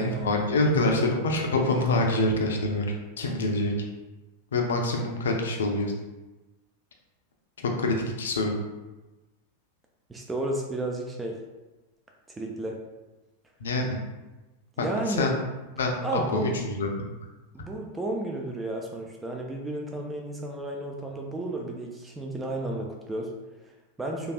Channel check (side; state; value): both; normal; correlation -0.08